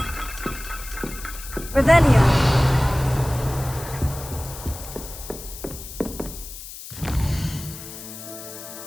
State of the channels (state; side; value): noise; left; hiss, 12 dB below the sound